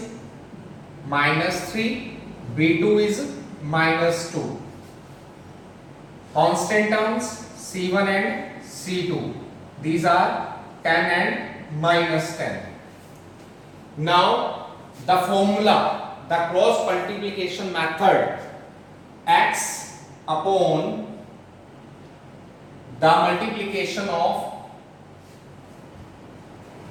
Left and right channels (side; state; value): both; identical; correlation 1.00